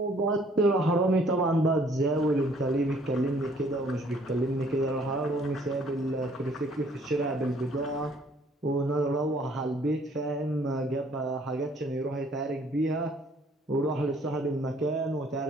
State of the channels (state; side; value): normal; both; correlation 0.60